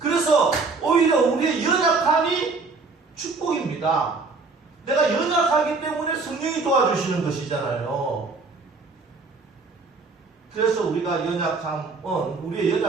그래서 오히려 우리의 연약함이 축복입니다. 내가 연약하기 때문에 성령이 도와주시는 것이잖아요. 그래서 우리가 우리의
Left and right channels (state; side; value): quieter; left; 4.1 dB